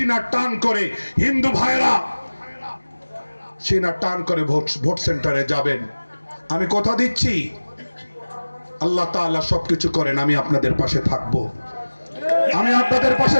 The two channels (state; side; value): inverted; both; correlation -1.00